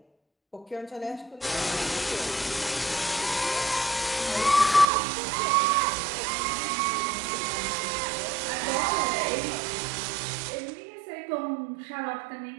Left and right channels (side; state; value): left; drops out; at 4.9 s